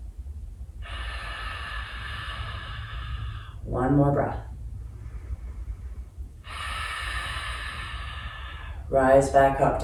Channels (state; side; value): identical; both; correlation 1.00